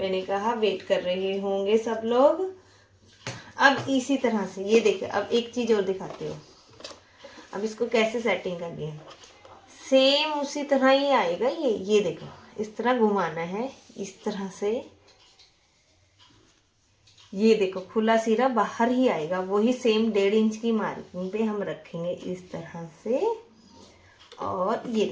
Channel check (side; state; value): both; identical; correlation 1.00